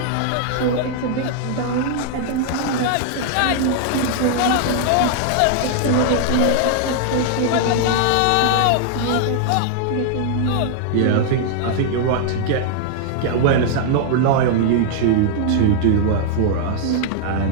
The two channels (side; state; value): both; different; correlation -0.01